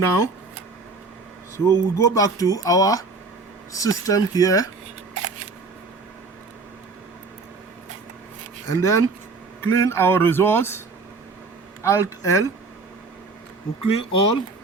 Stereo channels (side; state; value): left; quieter; 3.9 dB